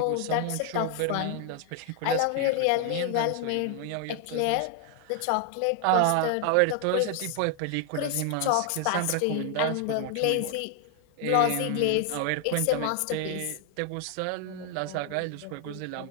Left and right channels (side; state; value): both; different; correlation 0.00